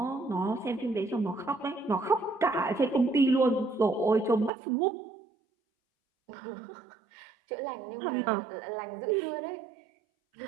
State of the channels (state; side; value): drops out; left; at 4.5 s